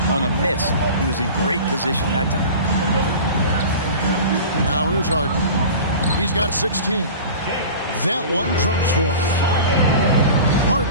on a miss. He was in great position that time. Now here's Harden. He's got 16. That one drops for him.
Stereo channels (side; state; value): both; inverted; correlation -0.36